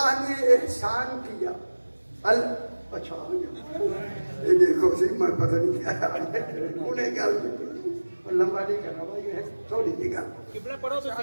نے احسان کیا اچھا یہ دیکھو سی میں پتہ نہیں کیا انہیں گل لمبا نہیں کرنا بھائی ہے تھوڑی سی گل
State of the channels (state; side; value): inverted; both; correlation -1.00